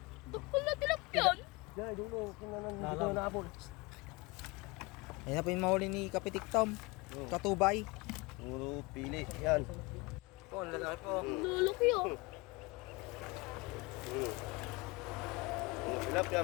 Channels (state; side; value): quieter; right; 25.2 dB